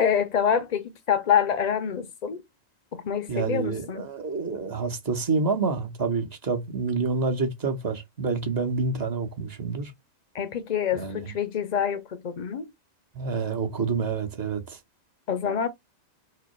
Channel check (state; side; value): late; right; 1.9 ms